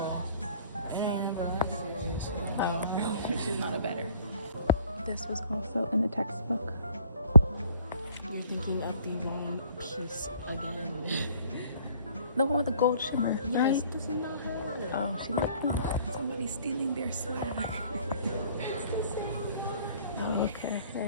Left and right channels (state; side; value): inverted; both; correlation -0.56